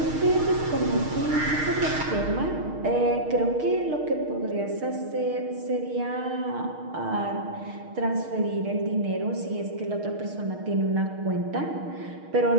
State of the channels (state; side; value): late; left; 6.5 ms